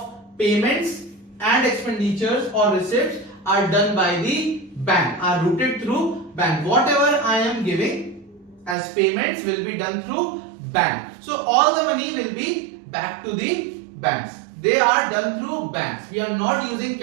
payments and expenditures or receipts are done by the bank, are routed through bank. Whatever I am giving as payments will be done through bank. So all the money will be back to the banks. They are done through banks. We are not using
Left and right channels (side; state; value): left; drops out; at 8.8 s